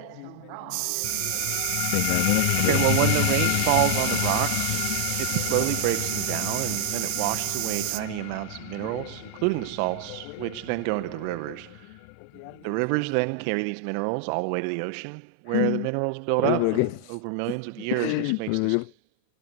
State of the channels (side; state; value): both; different; correlation 0.00